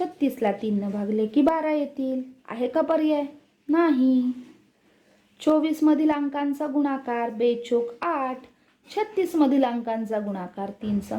3 भागले की 12 येतील. आहे का पर्याय? नाही. 24 मधील अंकांचा गुणाकार बेचोक 8. 36 मधील अंकांचा गुणाकार 3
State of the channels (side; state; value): both; identical; correlation 1.00